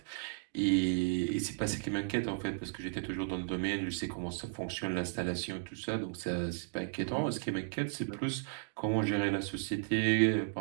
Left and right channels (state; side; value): silent; left; digital silence